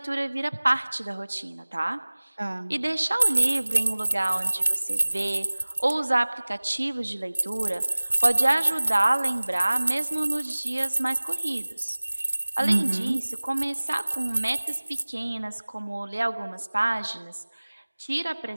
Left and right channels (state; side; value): inverted; both; correlation -1.00